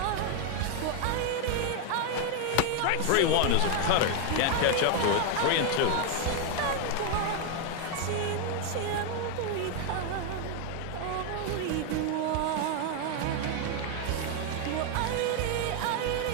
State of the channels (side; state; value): both; different; correlation 0.01